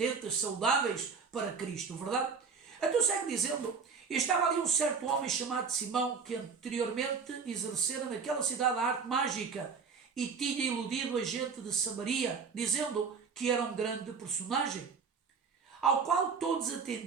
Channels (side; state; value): left; quieter; 5.5 dB